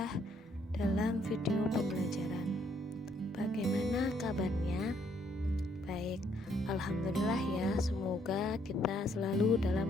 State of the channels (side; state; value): both; normal; correlation 0.69